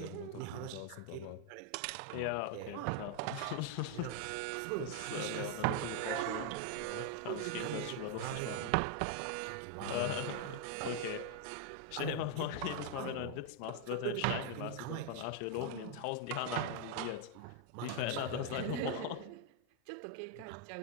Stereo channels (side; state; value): both; different; correlation 0.00